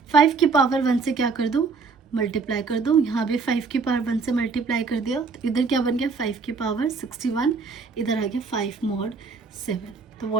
5 की पावर 1 से क्या कर दूँ मल्टीप्लाई कर दो, यहाँ भी 5 की पावर 1 से मल्टीप्लाई कर दिया, तो इधर क्या बन गया 5 की पावर 61, इधर आ गया 5 मॉड 7। तो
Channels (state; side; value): quieter; left; 4.7 dB